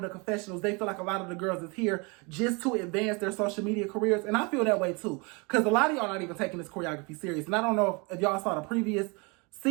the confessionals, they feel like a lot of the girls is here just to advance their social media careers. And I feel that way too. Because a lot of y'all not even taking this choreography serious. And I don't know if y'all saw the previous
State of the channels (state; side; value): quieter; left; 30.0 dB